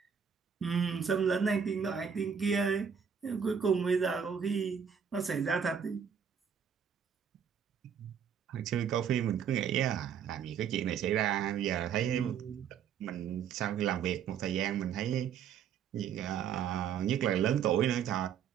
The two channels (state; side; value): quieter; left; 7.6 dB